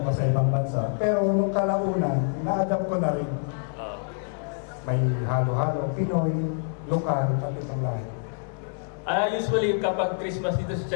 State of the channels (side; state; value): right; silent; digital silence